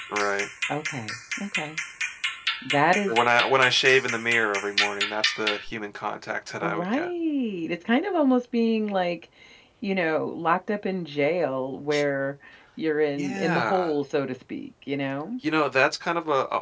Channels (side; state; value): both; identical; correlation 1.00